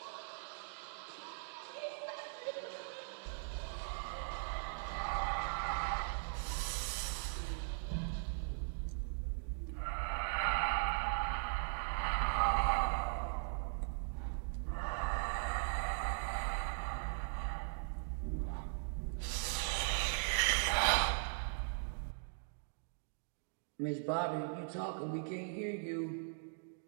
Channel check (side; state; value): left; silent; digital silence